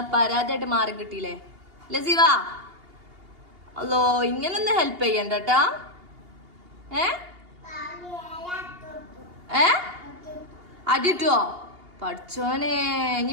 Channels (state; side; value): late; left; 2.8 ms